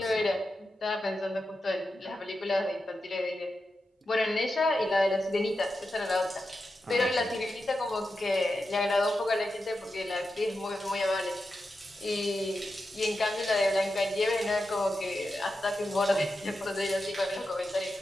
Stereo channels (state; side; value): normal; both; correlation 0.90